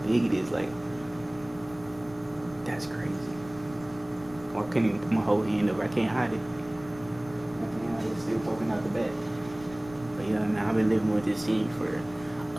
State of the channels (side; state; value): left; noise; rumble, 20 dB below the sound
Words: big it is. Like, that's crazy. Or I can't even put my whole hand over. I can't hide it. It's still poking out the back. But yeah, man, I've been living with this thing for